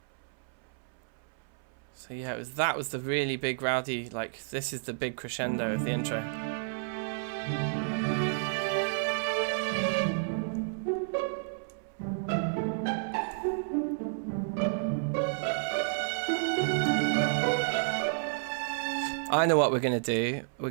So yeah, that was the really big rowdy, like, this is the big crescendo of the intro. I know what we're going to do. We're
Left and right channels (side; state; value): left; silent; 57 dB below the other